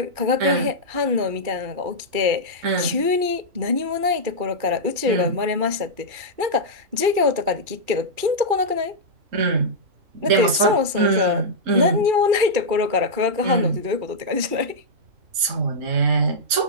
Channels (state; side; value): late; left; 2.4 ms